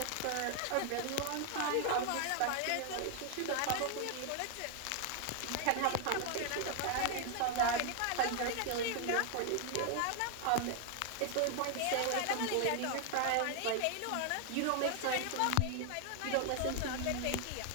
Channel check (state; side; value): different; both; correlation 0.00